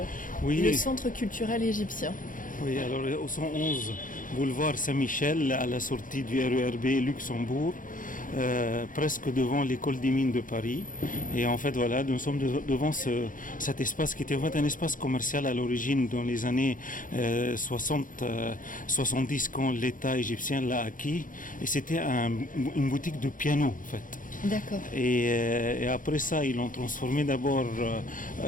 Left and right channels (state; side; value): late; right; 0.39 ms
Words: le Oui, centre culturel égyptien. oui, alors au 111 boulevard Saint-Michel, à la sortie du RERB Luxembourg, presque devant l'école des mines de Paris. Et en fait, voilà, nous sommes devant cet espace qui était en fait un espace commercial à l'origine dans les années 60, 70 quand l'État égyptien l'a acquis. Et c'était une boutique de piano en fait. D'accord. Et après ça, ils l'ont transformé d'abord